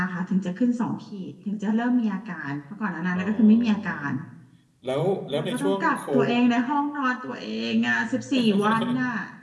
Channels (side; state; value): both; identical; correlation 1.00